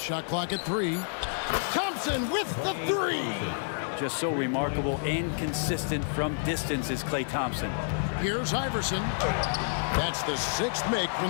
clock at 3. Thompson with the 3. Just so remarkable and consistent from distance is Klay Thompson. Here's Iverson. That's the 6th make from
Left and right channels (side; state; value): right; silent; digital silence